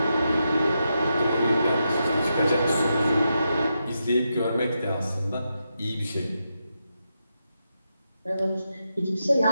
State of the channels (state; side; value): inverted; both; correlation -0.85